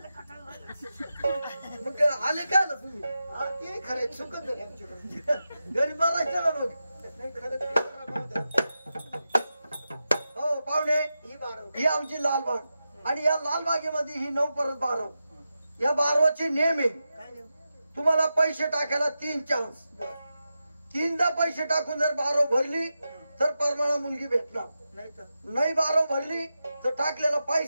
कटाळ झालं. मग आले काय ना तुम्ही. ते खरं चुकत घरी बघायचं ना मग. नाही खरं. हो पाहुणे ही 12 ही आमची लालबाग आणि या लालबागेमध्ये ही 9 परत 12. या 12चे नियम आहे. काय नाही. तुम्हाला पैसे टाकायला 3 चान्स. 3दा पैसे टाकून जर 12 भरली तर परमाणा मुलगी भेटणार. नाही तर नाही 12 भरली तर टाकलेला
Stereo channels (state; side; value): inverted; both; correlation -0.90